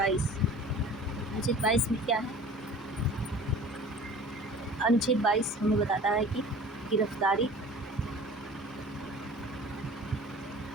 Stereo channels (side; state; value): both; normal; correlation 0.43